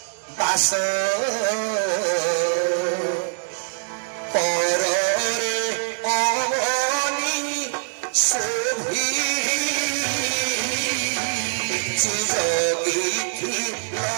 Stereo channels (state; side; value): silent; left; digital silence